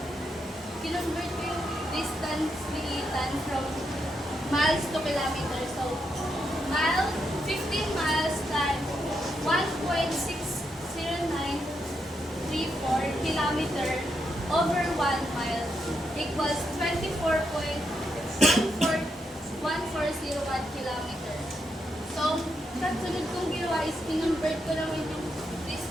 distance ni Ethan from miles to kilometers. So, 15 miles times 1.60934 kilometer over 1 mile equals 24.14101 kilometer. So, kasunod kong ginawa is kinonvert ko naman yung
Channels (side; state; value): both; normal; correlation 0.81